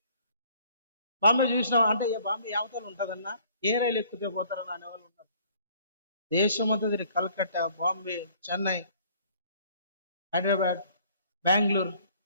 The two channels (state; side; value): inverted; both; correlation -0.57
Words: చూసినావు అంటే బాంబే యావతలు ఉంటుందన్నా, ఏ రైలు ఎక్కితే పోతారని అనేవాళ్ళు ఉంటారు. దేశమంతా తిరిగి కలకత్తా, బాంబే, చెన్నై, హైదరాబాద్, బెంగళూరు,